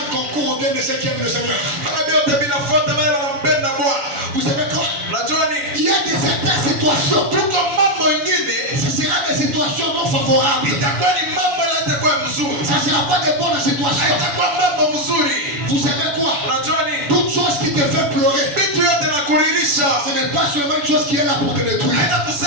concourt au bien de ceux qui aiment le Seigneur. kama vyote vinafuata wale wanampenda Bwana. Vous savez quoi? Unajua nini? Il y a des certaines situations. Tuko mambo ingine Ce sera des situations non favorables. itakuwa ni mambo yatakuwa mzuri, Ça ne sera pas des bonnes situations. haitakuwa mambo mzuri. Vous savez quoi? Unajua nini? Toute chose qui te fait pleurer, Vitu yote na kuririsha, ce n'est pas seulement une chose qui est là pour te détruire. haina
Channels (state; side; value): late; left; 7.0 ms